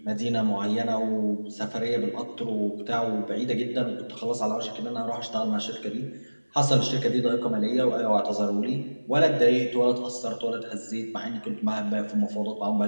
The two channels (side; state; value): both; inverted; correlation -1.00